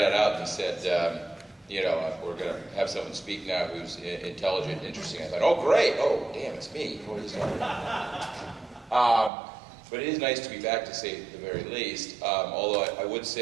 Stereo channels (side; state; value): left; drops out; at 9.3 s